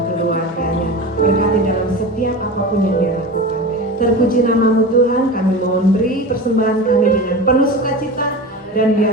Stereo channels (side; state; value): both; normal; correlation 0.29